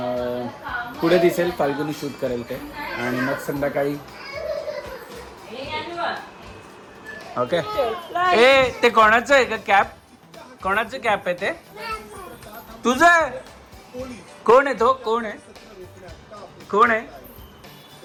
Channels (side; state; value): both; identical; correlation 1.00